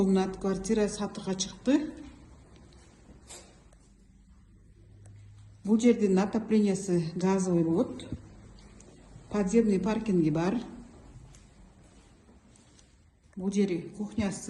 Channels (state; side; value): identical; both; correlation 1.00